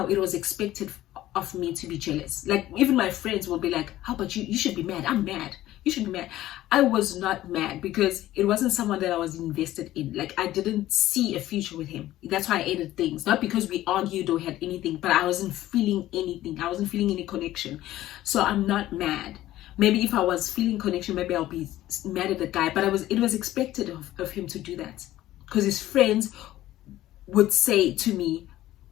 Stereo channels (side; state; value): right; quieter; 14.7 dB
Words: it was expected of me to be jealous. Like, even my friends will be like, how about you? You should be mad. I'm mad. You should be mad. I was not mad because it wasn't someone that I was invested in. Like, I didn't see a future with him. That's why I ended things. Not because we argued or had anything, but I wasn't feeling anything. I wasn't feeling any connection. So I'm not mad. Maybe if I was feeling connection, maybe I'll be mad at the guy. But it was expected of him to do that. Because his friends would say to me,